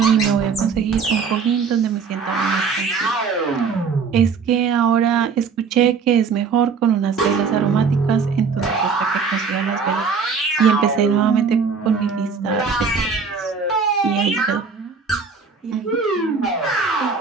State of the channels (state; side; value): quieter; left; 5.5 dB